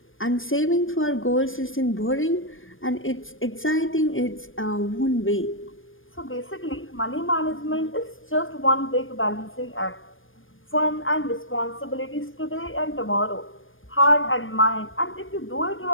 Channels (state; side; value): late; right; 0.59 ms